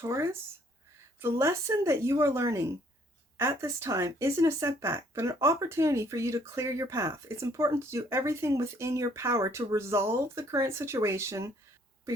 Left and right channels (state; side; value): normal; both; correlation 0.63